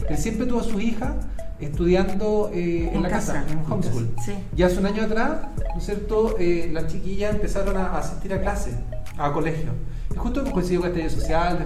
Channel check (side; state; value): both; identical; correlation 1.00